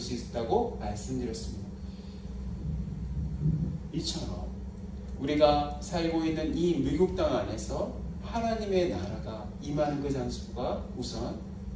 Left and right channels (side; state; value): both; identical; correlation 1.00